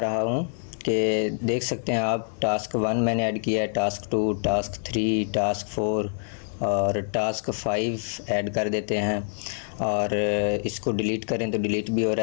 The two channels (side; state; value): right; silent; 61 dB below the other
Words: हूँ कि देख सकते हैं आप। टास्क 1 मैंने ऐड किया है, टास्क 2, टास्क 3, टास्क 4 और टास्क 5 ऐड कर देते हैं। और इसको डिलीट करें तो डिलीट भी हो